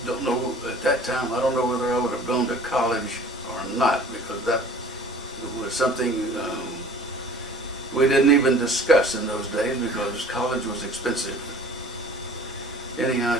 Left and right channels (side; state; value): both; normal; correlation 0.47